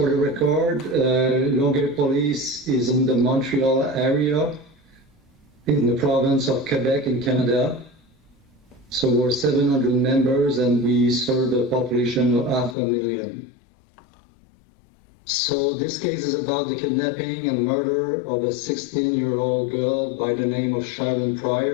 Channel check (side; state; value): right; drops out; at 12.8 s